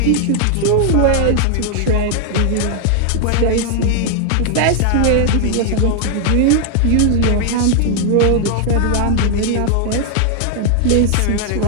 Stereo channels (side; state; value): both; different; correlation 0.00